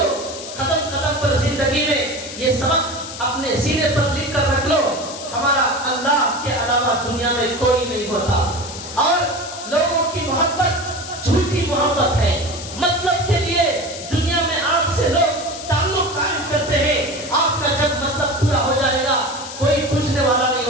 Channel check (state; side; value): noise; left; hiss, 11 dB below the sound